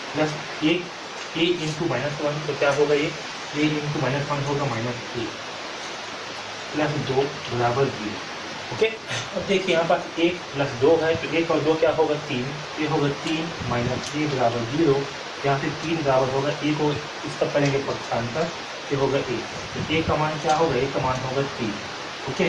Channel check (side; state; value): both; identical; correlation 1.00